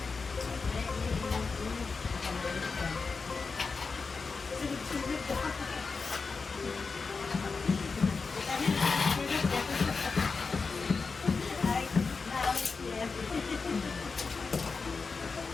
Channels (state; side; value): quieter; right; 4.6 dB